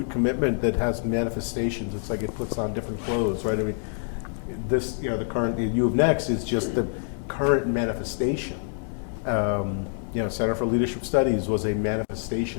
commitment that has manifestations. It's like it puts on different clothes, right? I mean, this, the current, U of Next is just the current manifestation. Center for Leadership Studies was a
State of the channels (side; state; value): right; silent; 61 dB below the other